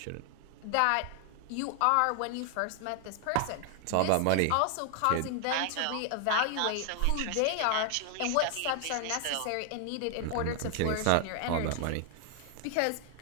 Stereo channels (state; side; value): different; both; correlation 0.00